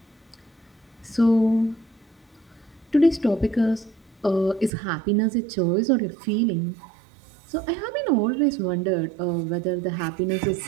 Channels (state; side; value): drops out; left; at 4.7 s